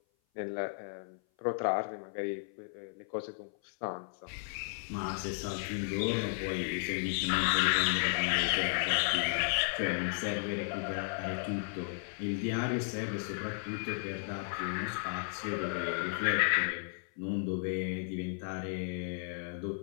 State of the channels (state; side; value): silent; right; 55 dB below the other